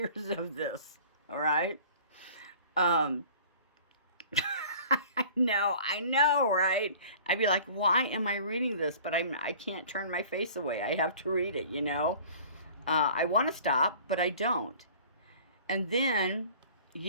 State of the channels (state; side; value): inverted; both; correlation -0.47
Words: this. All right. I know, right? I'd be like, why am I reading this? But I can't turn my face away. I have to read it, I want to stop, but I don't. And then,